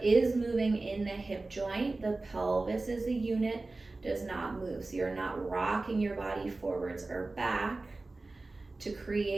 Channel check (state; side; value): quieter; left; 3.3 dB